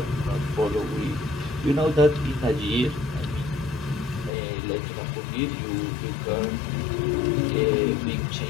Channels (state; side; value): drops out; right; at 4.3 s